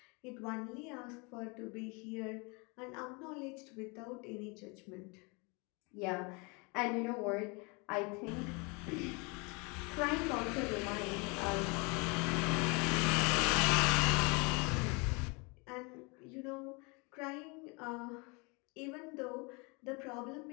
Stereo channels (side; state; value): right; quieter; 30.2 dB